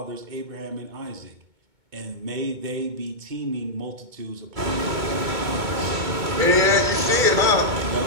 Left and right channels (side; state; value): left; late; 2.2 ms